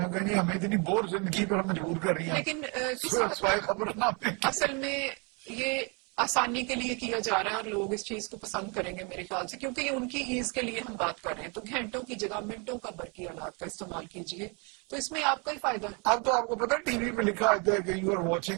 नहीं हमें इतनी बोर जिंदगी पर मजबूर कर रही हैं। लेकिन खबरनामे असल में ये आसानी के लिए किया जा रहा है और लोग इस चीज को पसंद करेंगे मेरे ख्याल से, क्योंकि ये उनकी ईज के लिए हम बात कर रहे हैं। तो घंटों की जगह मिनटों का बरकी आलात का इस्तेमाल कीजिए, तो इसमें आपका ही फायदा है। अब तो आपको पता है टीवी पे लिखा होता है कि you are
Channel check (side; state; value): left; quieter; 33.3 dB